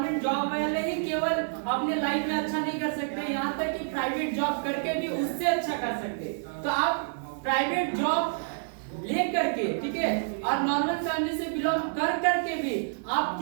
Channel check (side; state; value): left; silent; 59 dB below the other